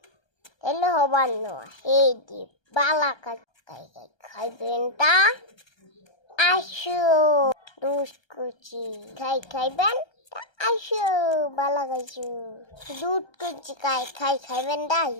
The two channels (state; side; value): late; right; 1.3 ms